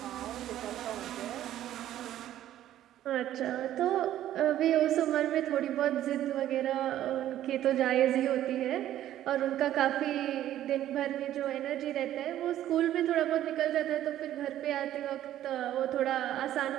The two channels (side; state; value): left; quieter; 12.5 dB